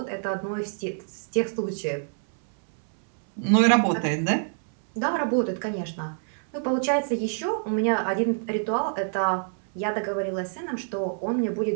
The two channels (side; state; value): left; silent; 60 dB below the other